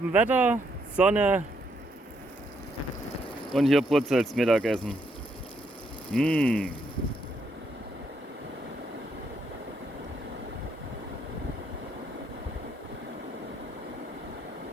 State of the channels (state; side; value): normal; both; correlation 0.74